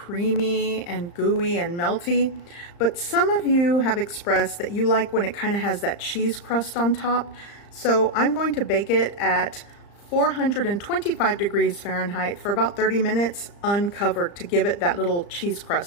and gooey and melty. But some of you have expressed that you like when it kind of has that cheese crust on top. So I'm going to bake it at 425 degrees Fahrenheit for about 30 minutes uncovered to give it that little cheese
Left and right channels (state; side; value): late; right; 35 ms